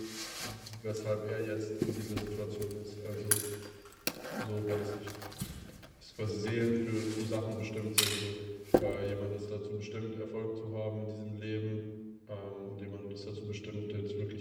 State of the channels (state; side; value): identical; both; correlation 1.00